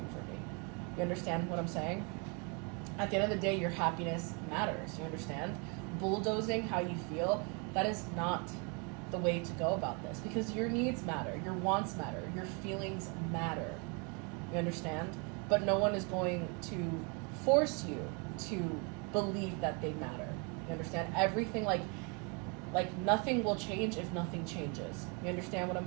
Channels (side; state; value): left; quieter; 33.9 dB